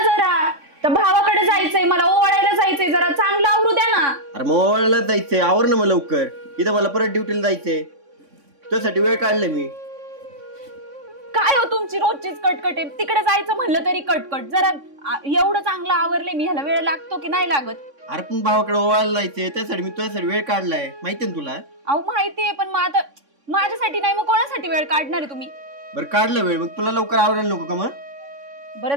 जरा, तर भावाकडे जायचंय, मला ओवाळायला जायचंय, जरा चांगलं आवरू द्या ना. अरे मग ओवाळायला जायचंय, आवर ना मग लवकर. इथं मला परत ड्युटीला जायचंय, तुझ्यासाठी वेळ काढलाय मी. काय हो तुमची रोजचीच कटकट आहे. तिकडे जायचं म्हणलं तरी कटकट. जरा एवढं चांगलं आवरले मी, ह्याला वेळ लागतो की नाही लागत? अरे पण भावाकडे ओवाळायला जायचंय, त्यासाठी मी तुझ्यासाठी वेळ काढलाय, माहितीये ना तुला? अहो माहितीये, पण मग आता माझ्यासाठी नाही मग कोणासाठी वेळ काढणार आहे तुम्ही? बरं काढलं वेळ, मग तुला लवकर आवरायला नको का? मग बरं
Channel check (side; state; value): left; late; 3.6 ms